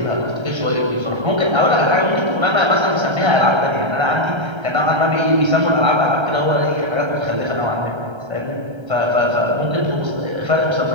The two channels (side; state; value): left; late; 1.3 ms